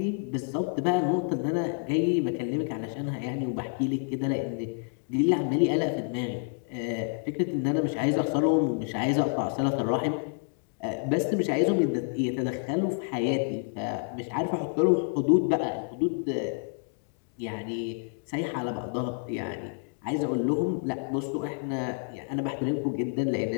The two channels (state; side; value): silent; right; 59 dB below the other